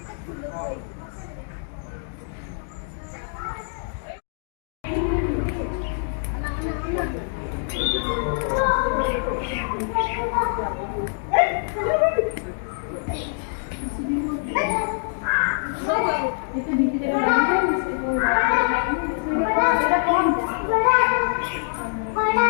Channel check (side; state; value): right; silent; digital silence